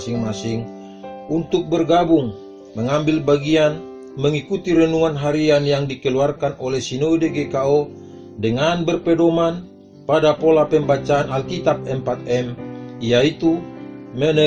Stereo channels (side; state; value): both; identical; correlation 1.00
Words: untuk bergabung, mengambil bagian, mengikuti renungan harian yang dikeluarkan oleh Sinode GKO dengan berpedoman pada pola pembacaan Alkitab 4M, yaitu